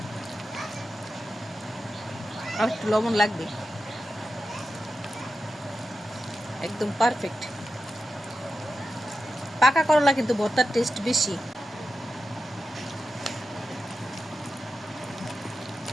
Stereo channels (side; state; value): both; normal; correlation 0.90